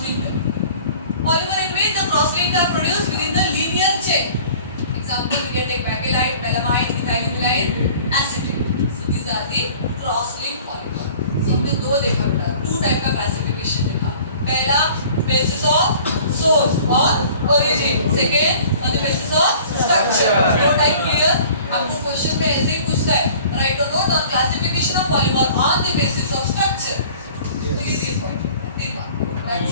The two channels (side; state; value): both; inverted; correlation -0.48